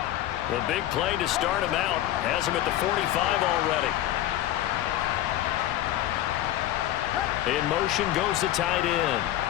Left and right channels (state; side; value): quieter; right; 13.5 dB